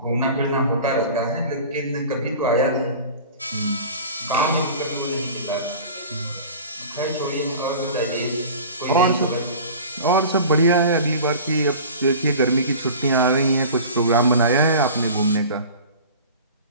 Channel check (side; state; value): both; inverted; correlation -0.39